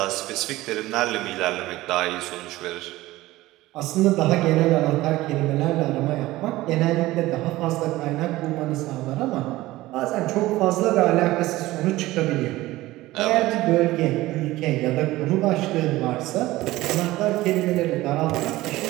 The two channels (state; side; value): quieter; left; 17.7 dB